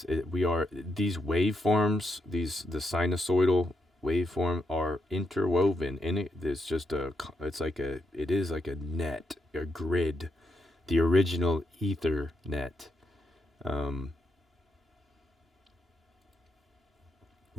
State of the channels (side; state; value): both; normal; correlation 0.79